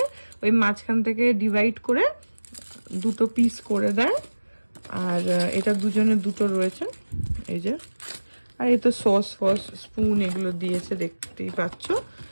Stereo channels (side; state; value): both; inverted; correlation -1.00